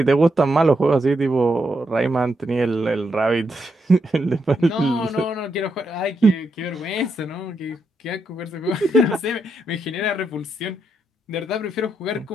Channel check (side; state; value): both; normal; correlation 0.81